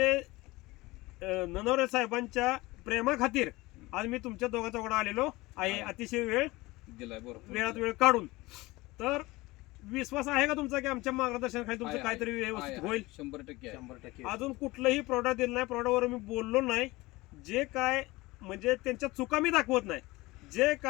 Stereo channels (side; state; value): right; quieter; 21.0 dB